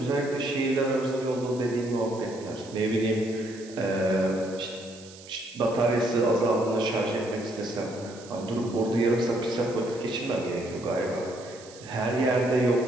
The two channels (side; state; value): right; noise; hiss, 20 dB below the sound